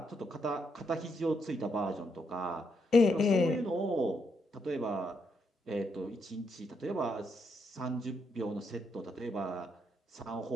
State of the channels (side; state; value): both; normal; correlation 0.78